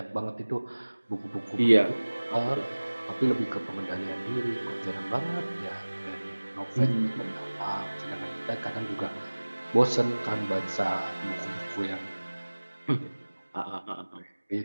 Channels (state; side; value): inverted; both; correlation -1.00